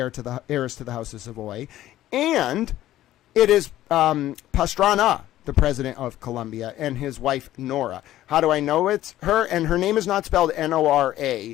to the House of Savoy, and it is Pastrana, the president of Colombia, and his wife, Nora. How do I know it's her? And her name is not spelled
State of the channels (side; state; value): right; quieter; 13.9 dB